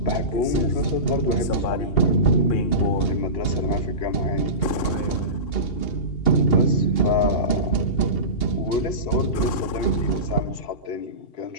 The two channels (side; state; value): right; late; 2.8 ms